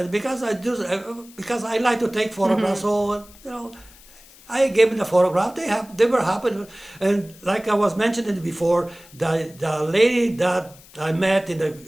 because I like to take photographs." So I gave them the photograph. They were happy, and like I was mentioning before, the lady that I met in the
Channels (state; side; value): noise; left; hiss, 23 dB below the sound